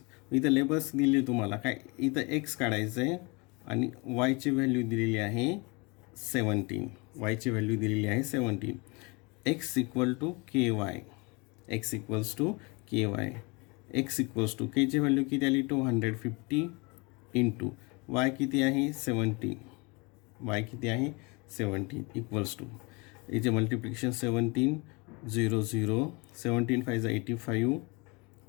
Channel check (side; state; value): right; quieter; 28.7 dB